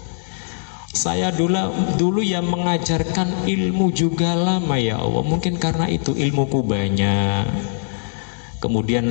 saya dulu yang mengajarkan ilmu juga lama ya Allah, mungkin karena itu ilmuku banyak. Kemudian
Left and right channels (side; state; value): right; silent; digital silence